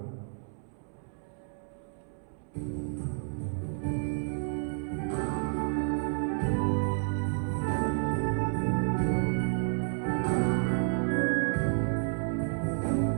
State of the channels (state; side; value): silent; left; 57 dB below the other